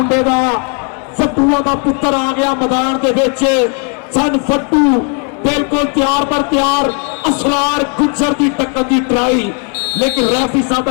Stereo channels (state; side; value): quieter; right; 39.9 dB